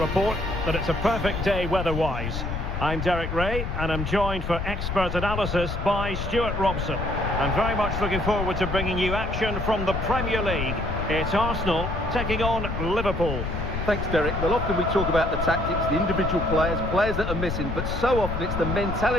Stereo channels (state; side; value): noise; left; rumble, 4 dB below the sound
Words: that it's a perfect day weather-wise. I'm Derek Ray, and I'm joined for expert analysis by Stuart Robson. I'm very much looking forward to bringing you action from the Premier League. It's Arsenal taking on Liverpool. Thanks, Derek. Well, often we talk about the tactics, the individual players that are missing, but so often it's the